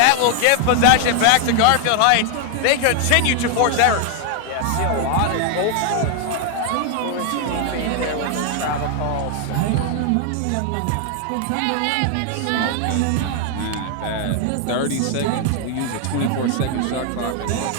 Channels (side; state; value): both; different; correlation 0.00